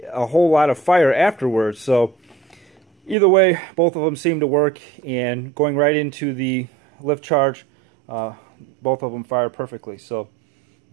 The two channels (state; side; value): drops out; left; at 3.2 s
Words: a whole lot of fire afterwards. So either way, both of them seem to work, and going right into the lift charge, both of them fired perfectly. So